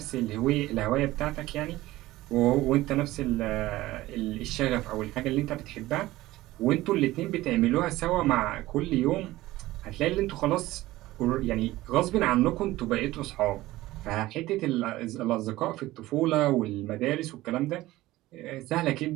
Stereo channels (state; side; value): quieter; left; 17.3 dB